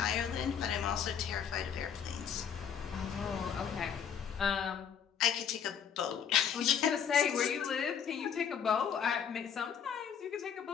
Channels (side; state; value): right; quieter; 8.0 dB